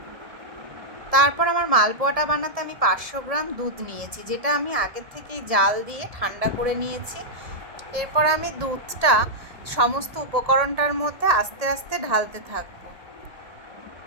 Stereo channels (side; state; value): left; late; 1.7 ms